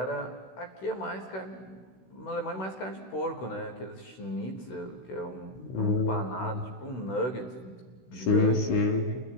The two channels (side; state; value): right; late; 16 ms